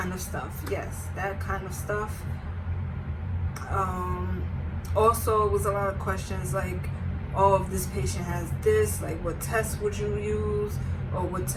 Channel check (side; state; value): both; identical; correlation 1.00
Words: of stuff, yes, that kind of stuff. Also, it was a lot of questions like, oh, if this patient has this, like what test would you use, or what